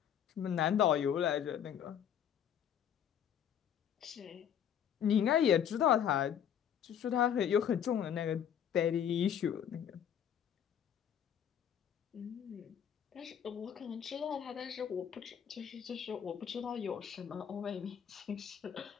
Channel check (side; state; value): right; quieter; 9.0 dB